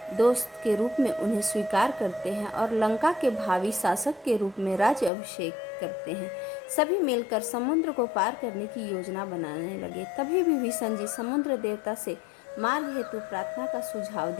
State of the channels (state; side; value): drops out; right; at 5.1 s